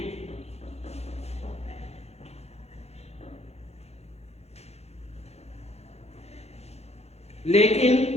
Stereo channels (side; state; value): right; late; 0.31 ms